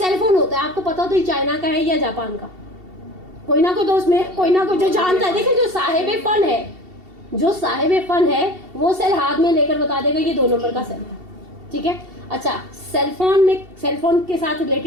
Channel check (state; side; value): late; left; 2.7 ms